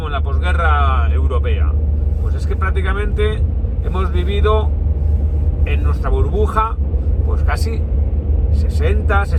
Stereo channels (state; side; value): identical; both; correlation 1.00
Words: en la posguerra europea. Pues es que prácticamente hemos vivido en nuestra burbuja pues casi 70